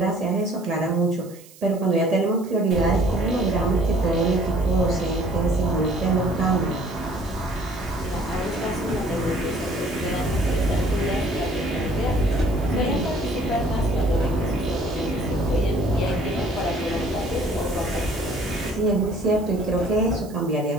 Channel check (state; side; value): noise; right; hiss, 22 dB below the sound